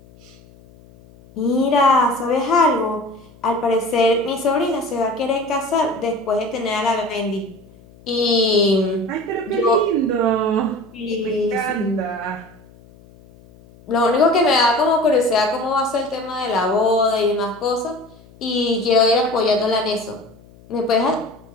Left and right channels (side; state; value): left; noise; hum, 25 dB below the sound